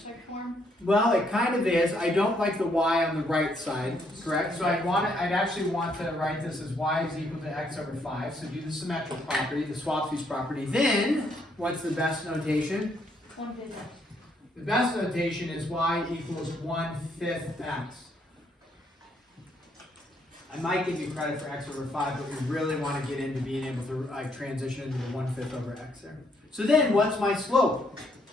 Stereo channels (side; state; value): both; normal; correlation 0.72